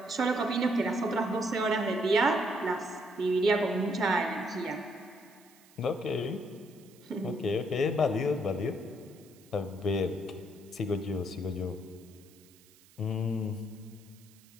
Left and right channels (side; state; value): right; noise; hiss, 26 dB below the sound